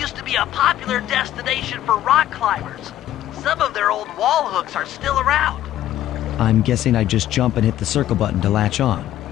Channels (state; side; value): quieter; right; 12.9 dB